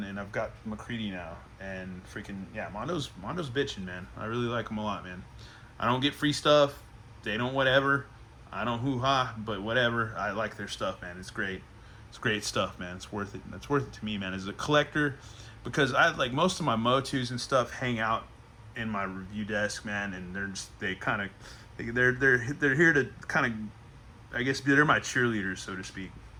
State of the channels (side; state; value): both; identical; correlation 1.00